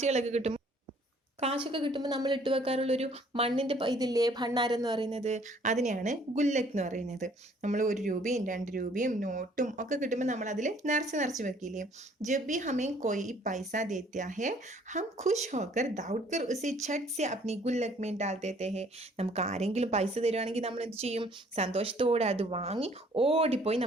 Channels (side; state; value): both; normal; correlation 0.59